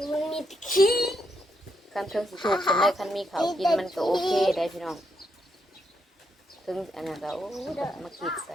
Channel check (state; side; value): normal; both; correlation 0.79